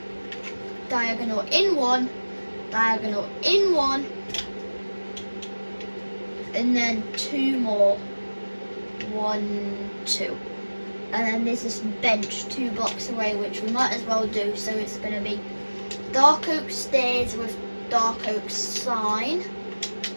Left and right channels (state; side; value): inverted; both; correlation -1.00